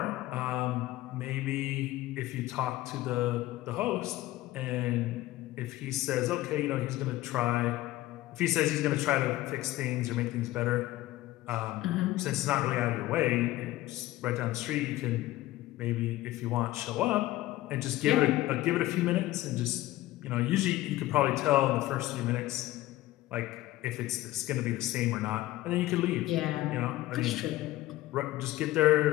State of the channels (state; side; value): quieter; right; 16.6 dB